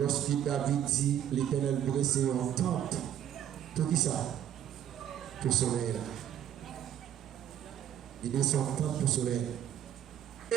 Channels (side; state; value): left; quieter; 10.3 dB